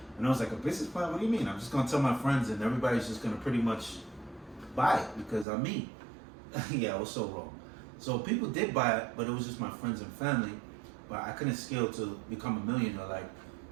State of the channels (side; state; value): left; drops out; at 5.5 s